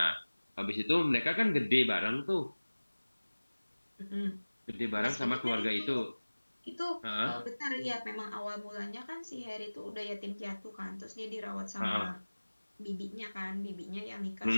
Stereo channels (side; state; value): both; inverted; correlation -1.00